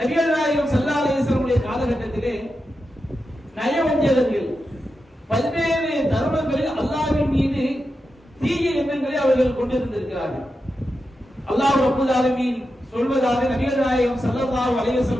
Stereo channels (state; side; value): normal; both; correlation 0.89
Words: நாயகம் ஸல்லல்லாஹு அலைஹி வஸல்லம் காலகட்டத்திலே நயவஞ்சகர்கள் பல்வேறு தர்மங்களில் அல்லாஹ்வின் மீது தீய எண்ணங்களை அவர்கள் கொண்டிருந்திருக்கிறார்கள். அல்லாஹ் ரப்பல் ஆலமீன் சொல்வதாக நபிகள் நாயகம் ஸல்லல்லாஹு அலைஹி